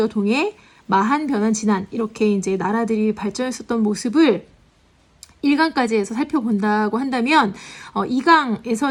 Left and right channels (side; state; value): both; identical; correlation 1.00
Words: 동해, 마한, 변한, 진안 이렇게 이제 나라들이 발전했었던 모습을 1강까지 해서 살펴본다고 한다면